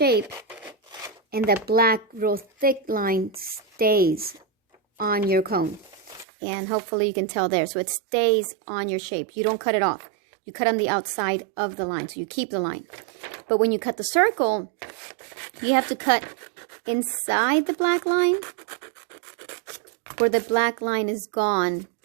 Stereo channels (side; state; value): left; drops out; at 6.2 s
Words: and that black real thick line stays on your cone. And hopefully you can tell there. So it stays on your shape. You don't cut it off. You cut on the outside of the line. So you keep the line. But when you cut the circle, you have to cut inside the black line where the black line is gone